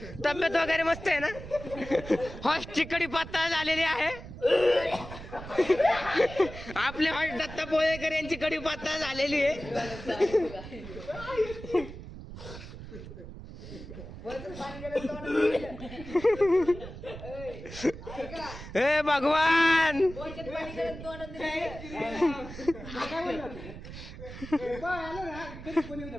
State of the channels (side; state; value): right; noise; rumble, 12 dB below the sound